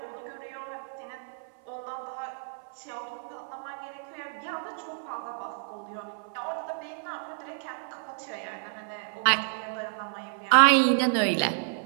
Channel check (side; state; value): left; silent; 58 dB below the other